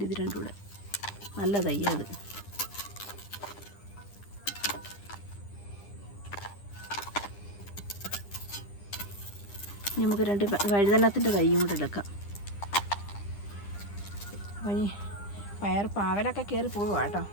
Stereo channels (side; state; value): right; late; 9.9 ms